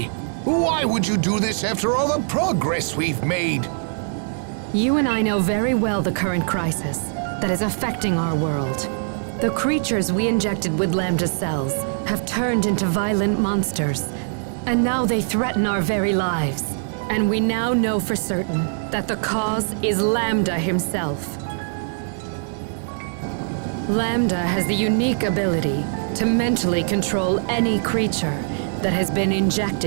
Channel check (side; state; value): left; silent; 64 dB below the other